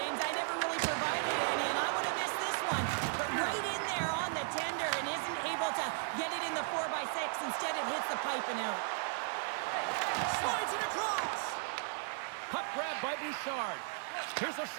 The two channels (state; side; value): silent; left; 54 dB below the other